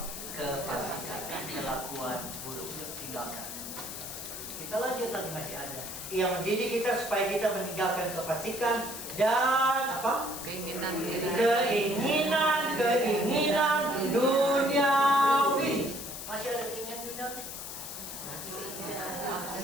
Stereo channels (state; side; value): noise; left; hiss, 8 dB below the sound